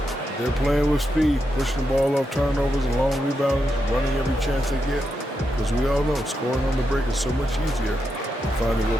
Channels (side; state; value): both; normal; correlation 0.85